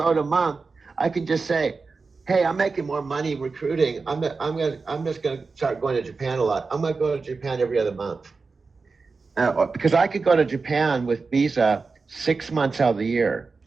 a month. I can just say, "Hey, I'm making more money recruiting. I'm just gonna start going to Japan a lot. I'm gonna go to Japan every other month." Because I could go to Japan with visa 6 months out of the year.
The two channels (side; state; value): left; quieter; 4.3 dB